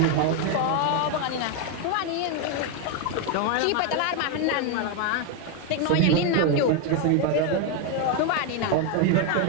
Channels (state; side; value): different; both; correlation 0.01